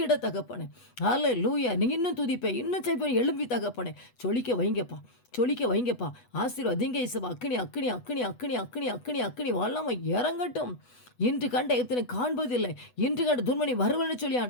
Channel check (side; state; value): right; late; 8.1 ms